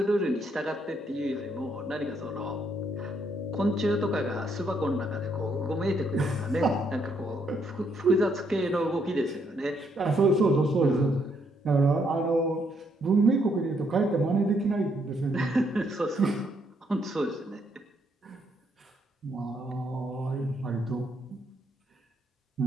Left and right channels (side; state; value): both; normal; correlation 0.73